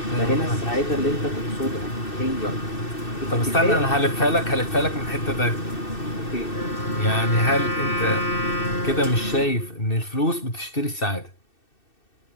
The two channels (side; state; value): right; late; 2.6 ms